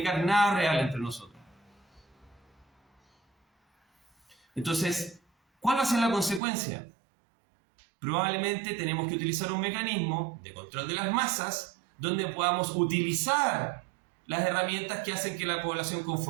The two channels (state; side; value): drops out; left; at 6.4 s